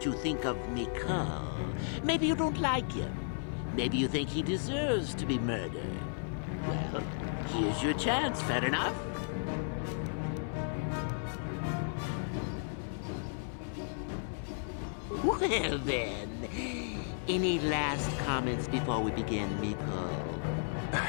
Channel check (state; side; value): silent; right; 55 dB below the other